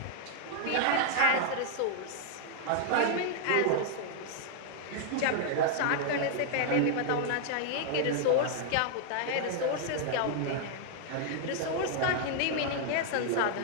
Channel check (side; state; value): both; different; correlation 0.00